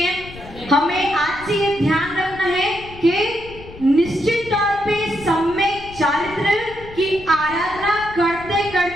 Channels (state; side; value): noise; left; rumble, 17 dB below the sound